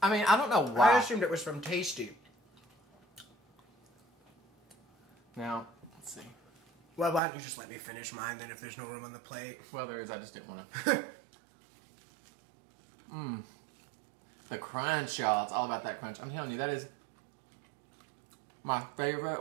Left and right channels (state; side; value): drops out; left; at 7.2 s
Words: I mean, I don't know why. I assumed it was from Tasty. Now, let's see. Well, why don't you just let me finish mine then if there's no room on the plate? Well, there is. I just didn't want to. The crunch, y'all. It's all about that crunch. I'm telling you, that is my